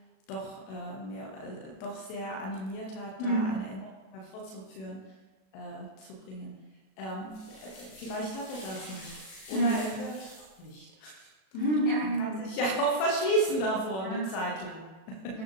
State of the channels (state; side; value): late; right; 37 ms